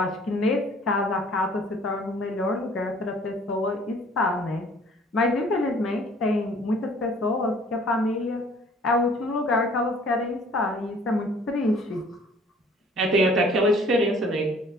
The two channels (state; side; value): normal; both; correlation 0.54